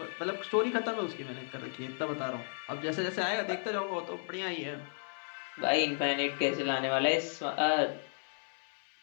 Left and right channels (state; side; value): silent; right; 55 dB below the other